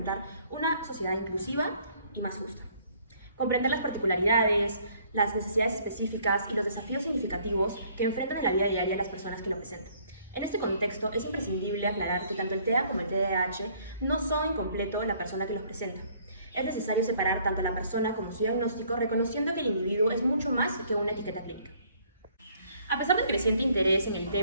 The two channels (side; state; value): both; inverted; correlation -0.61